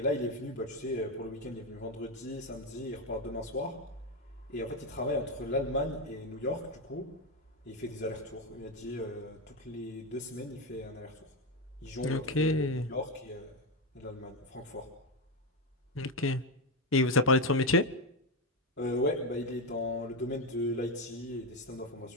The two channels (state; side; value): normal; both; correlation 0.09